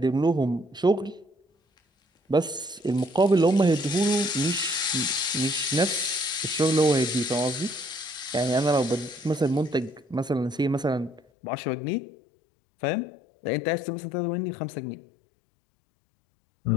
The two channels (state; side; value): drops out; right; at 11.2 s